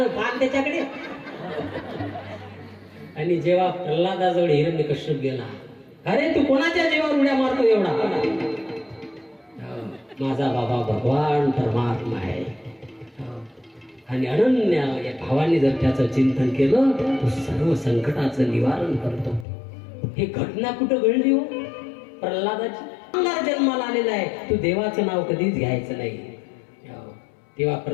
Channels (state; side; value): drops out; right; at 19.5 s